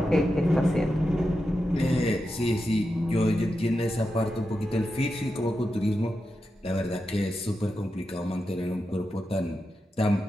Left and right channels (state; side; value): normal; both; correlation 0.89